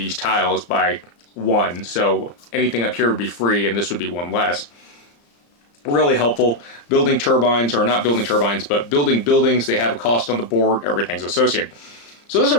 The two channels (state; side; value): late; right; 34 ms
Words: tiles by 1. So anything up here would be free, and this would be 1 less. Really helpful. Building turbines, or not building turbines, but building buildings. They have a cost on the board. Everything's associated. So this is